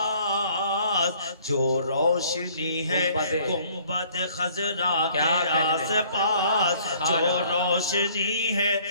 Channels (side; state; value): both; inverted; correlation -0.58